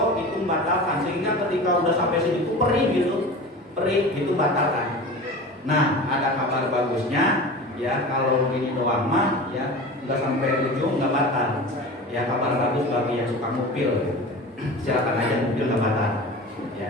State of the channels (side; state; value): both; normal; correlation 0.34